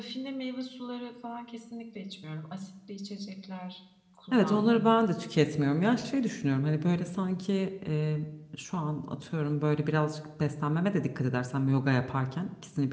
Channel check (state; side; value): identical; both; correlation 1.00